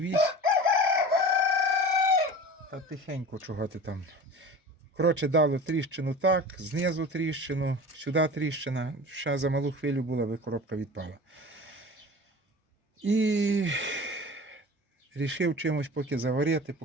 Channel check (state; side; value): normal; both; correlation 0.37